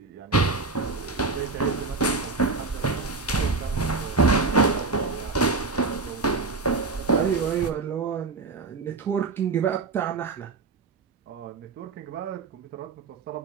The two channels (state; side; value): quieter; left; 4.1 dB